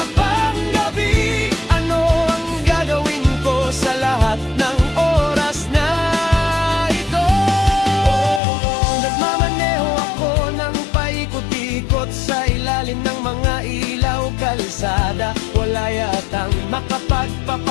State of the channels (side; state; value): right; drops out; at 8.4 s